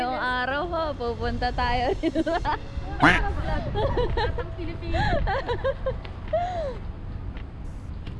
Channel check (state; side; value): identical; both; correlation 1.00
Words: araw ho, pupunta tayo dito.